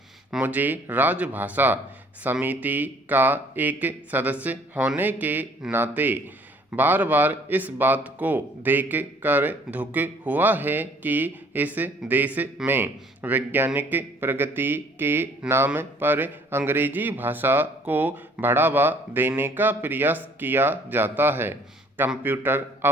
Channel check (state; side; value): normal; both; correlation 0.58